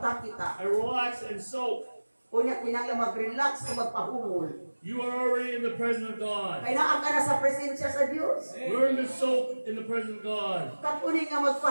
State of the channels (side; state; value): both; inverted; correlation -1.00